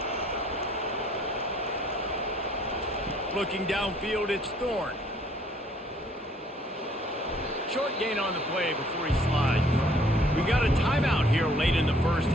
Looking downfield, it's Thorne. Short gain on the play before he slides. We got a timeout here late in the 1st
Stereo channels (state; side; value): normal; both; correlation 0.60